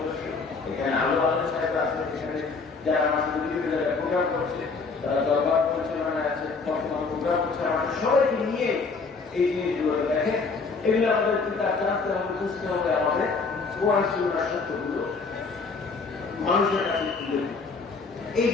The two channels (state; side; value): quieter; right; 4.4 dB